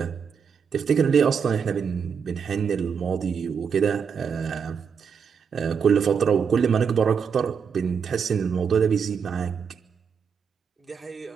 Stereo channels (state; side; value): quieter; left; 6.6 dB